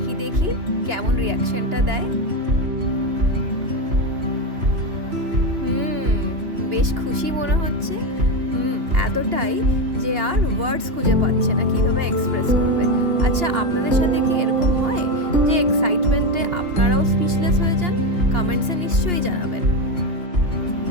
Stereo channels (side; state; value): left; late; 2.8 ms